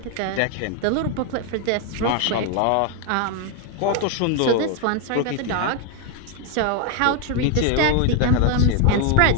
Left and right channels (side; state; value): both; different; correlation 0.01